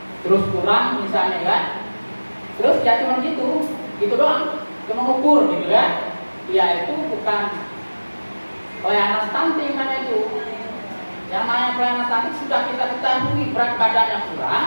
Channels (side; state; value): both; inverted; correlation -1.00